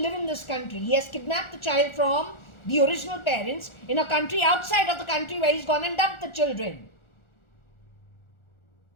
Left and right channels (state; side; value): late; right; 1.4 ms